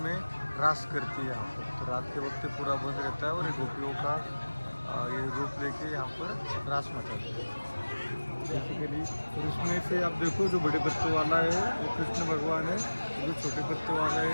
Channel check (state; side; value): inverted; both; correlation -1.00